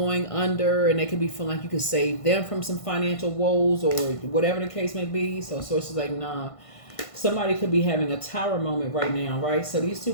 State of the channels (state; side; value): late; right; 1.5 ms